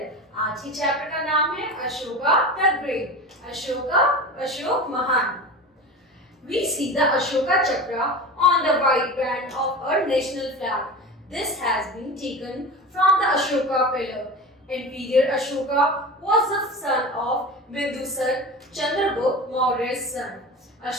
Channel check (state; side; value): normal; both; correlation 0.30